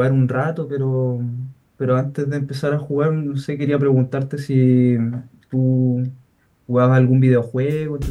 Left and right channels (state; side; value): identical; both; correlation 1.00